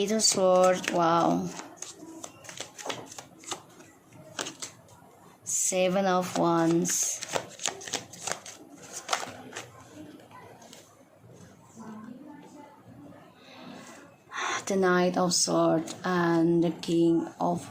of Swords, wow, Seven of Wands, the Knight of Swords, and the King of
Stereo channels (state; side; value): identical; both; correlation 1.00